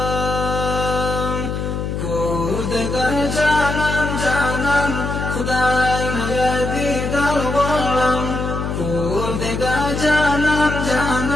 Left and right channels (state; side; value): noise; left; hum, 3 dB below the sound